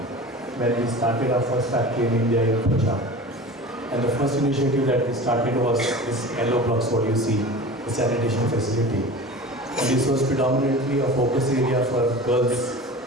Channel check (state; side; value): normal; both; correlation 0.36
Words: when we started our first factory in India in Punjab. And the first initiative that we started was this yellow blocks, what you see, the sanitation facility. And this was predominantly a focus area for girls.